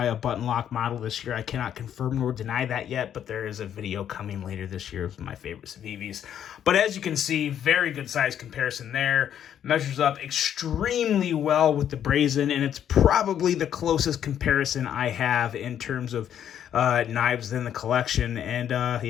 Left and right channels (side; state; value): right; quieter; 9.7 dB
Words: a button lock model this year. I cannot confirm nor deny that yet, but there is a video coming later this year of my favorite Civivis. But as you can see, very good size comparison there. Measures up extremely well with the Brazen, and it's probably the closest comparison I have in terms of knives in the collection, and